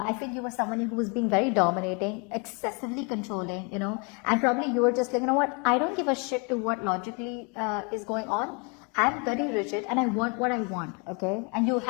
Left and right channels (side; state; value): right; quieter; 32.5 dB